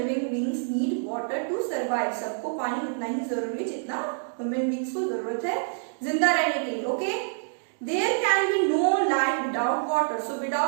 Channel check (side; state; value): left; silent; 60 dB below the other